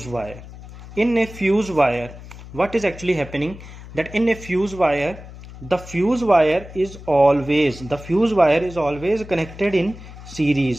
wire. In a fuse wire, what is actually happening, that in a fuse wire, the fuse wire is always connected in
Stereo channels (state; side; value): noise; left; hum, 15 dB below the sound